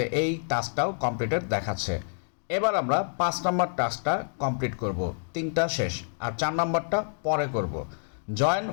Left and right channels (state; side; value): silent; right; digital silence